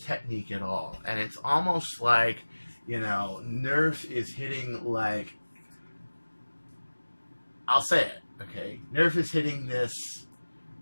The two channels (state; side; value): inverted; both; correlation -1.00